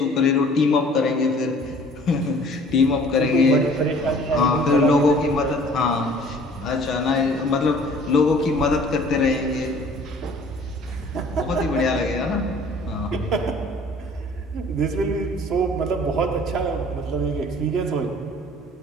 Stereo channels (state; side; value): normal; both; correlation 0.52